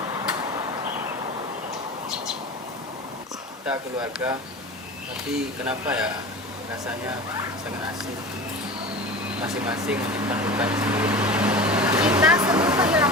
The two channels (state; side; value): normal; both; correlation 0.33